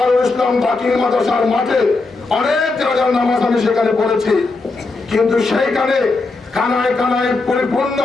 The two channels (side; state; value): right; quieter; 3.6 dB